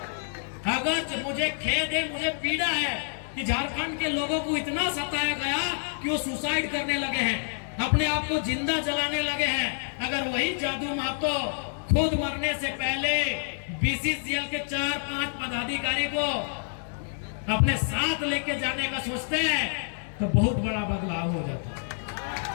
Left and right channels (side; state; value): right; silent; digital silence